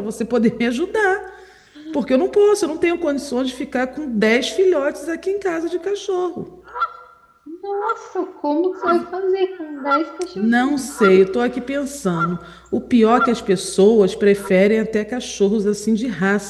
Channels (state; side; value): identical; both; correlation 1.00